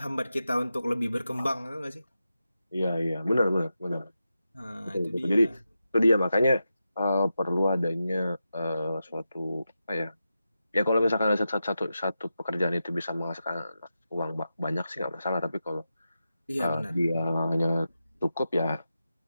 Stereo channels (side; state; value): both; inverted; correlation -0.89